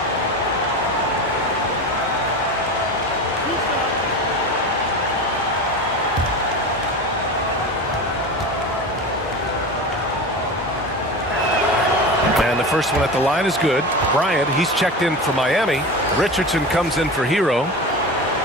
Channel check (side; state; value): both; normal; correlation 0.28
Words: And the first one at the line is good. Bryant, he's checked in for Miami. Richardson comes in for Herro.